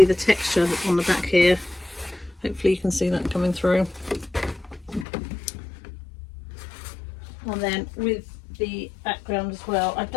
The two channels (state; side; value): drops out; right; at 5.1 s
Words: the texture on the back here. Hopefully you can see that coming through. And then with the background as well, I've